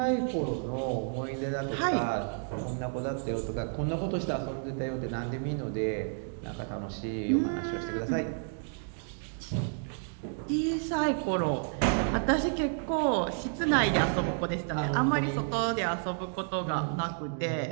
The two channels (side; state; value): left; silent; 57 dB below the other